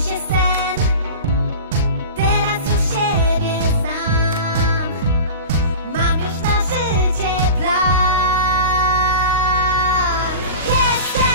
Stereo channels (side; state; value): both; inverted; correlation -0.32